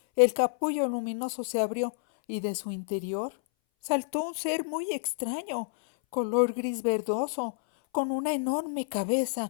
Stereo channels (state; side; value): silent; right; 59 dB below the other